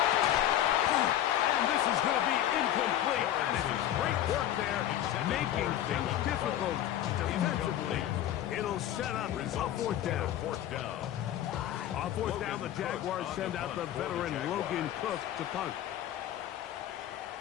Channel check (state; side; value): quieter; right; 11.9 dB